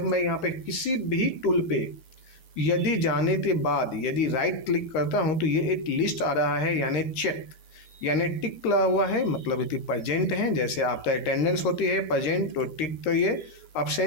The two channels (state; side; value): late; right; 12 ms